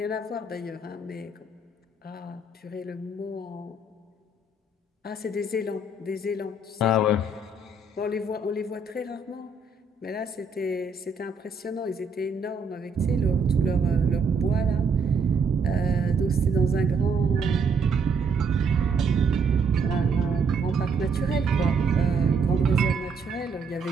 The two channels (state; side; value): quieter; left; 3.8 dB